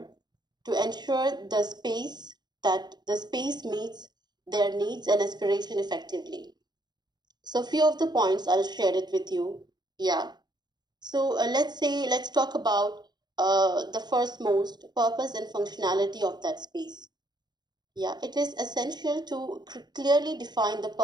to ensure the space meets their needs and aspiration effectively. So, few of the points I'll share it with you. Yeah. So let's talk about the first most purpose and functionality of that space. Yeah, it is essential to clearly define the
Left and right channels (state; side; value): late; left; 0.21 ms